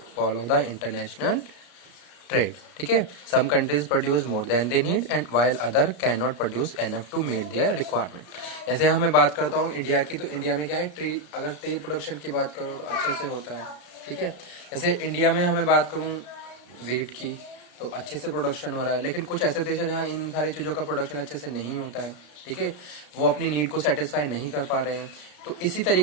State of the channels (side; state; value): right; late; 33 ms